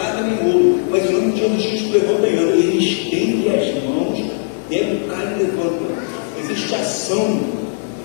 nem ouro, mas em nome de Jesus Cristo levanta. Ele estende as mãos, pega o cara e levanta. Existe ação.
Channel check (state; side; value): silent; right; digital silence